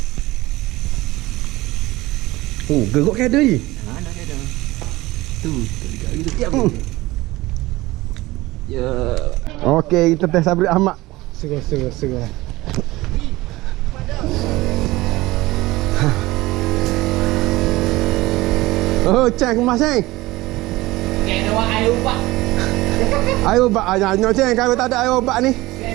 Oh, gerok kada ni. Mana kada? Tu gitu. Ya. Okey, kita test Sabri Ahmad. Segar. Oh, ceng kemas ceng. Kena buat air ubat. Air ubat aja ceng, kalau tak ada air ubat ni.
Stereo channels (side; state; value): left; quieter; 19.3 dB